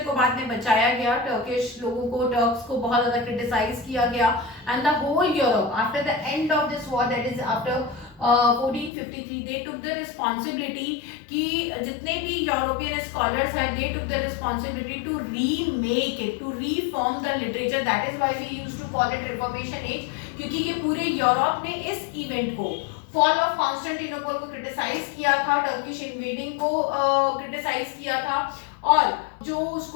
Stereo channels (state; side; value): drops out; right; at 8.9 s